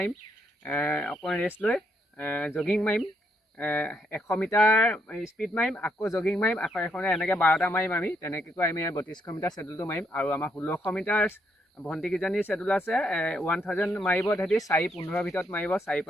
অকণমান ৰেষ্ট লৈ জগিং মাৰিম, 100 মিটাৰ স্পীড মাৰিম, আকৌ জগিং মাৰিম, আকৌ এখনে এনেকৈ 12টা মাৰিম। আমি তেনেকৈ আমি 3200 মিটাৰ শেডুলটো মাৰিম। আৰু আমাৰ 1600 মিটাৰ ভণ্টিকেইজনীৰ শেডুল আছে, 1000 মাৰিব তেহেঁতি 4:15 ভিতৰত মাৰিব, 4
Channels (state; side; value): normal; both; correlation 0.76